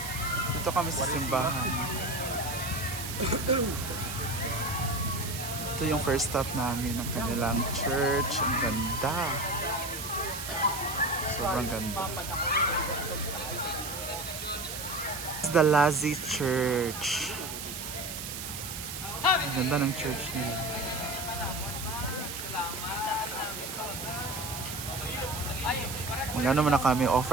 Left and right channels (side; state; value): right; noise; hiss, 7 dB below the sound